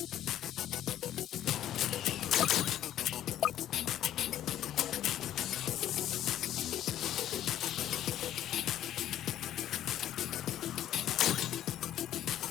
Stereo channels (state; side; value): quieter; right; 11.8 dB